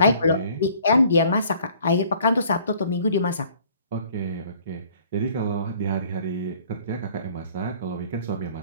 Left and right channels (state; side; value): inverted; both; correlation -0.56